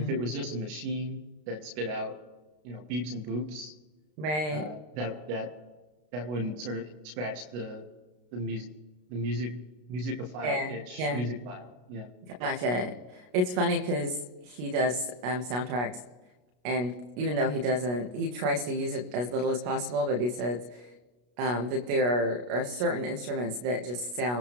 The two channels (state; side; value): late; left; 33 ms